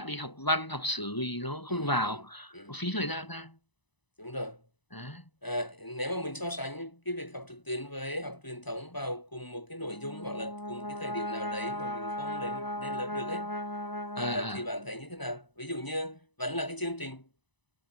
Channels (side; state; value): right; late; 1.0 ms